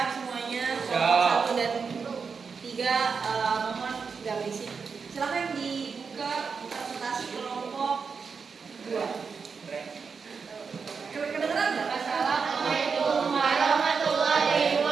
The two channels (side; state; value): left; quieter; 5.5 dB